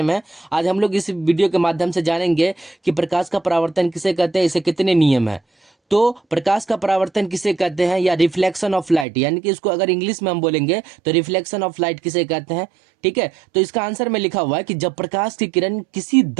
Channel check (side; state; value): left; drops out; at 9.1 s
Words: है, आज हम लोग इस वीडियो के माध्यम से जानेंगे कि प्रकाश का परावर्तन किसे कहते हैं, इसे कितने नियम है। तो प्रकाश का परावर्तन किसे कहते हैं या रिफ्लेक्शन ऑफ लाइट, यानी कि इसको अगर इंग्लिश में हम बोलेंगे तो रिफ्लेक्शन ऑफ लाइट किसे कहते हैं। ठीक है, तो इसका आंसर में लिखा हुआ है कि जब प्रकाश की किरण किसी